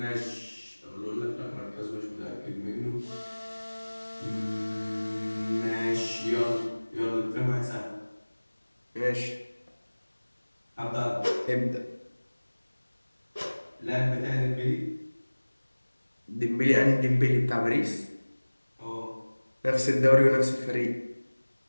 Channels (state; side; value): inverted; both; correlation -1.00